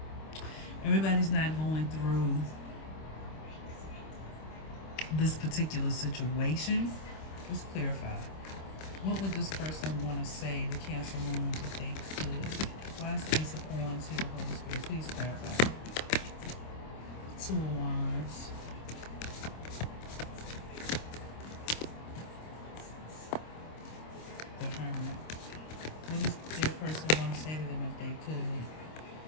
through this particular situation. Let's clarify. What would this person want to say to Cancer Moon if they could? Why is the Ace of Wands here, Holy Spirit? Please clarify. Two of Wands. The Hermit. What does their person want to say to them if they could?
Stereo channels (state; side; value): late; right; 26 ms